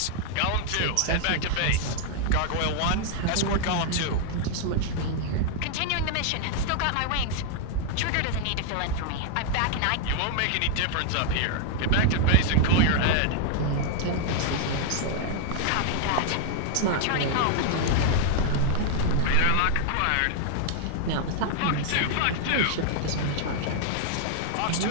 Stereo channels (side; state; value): both; different; correlation -0.01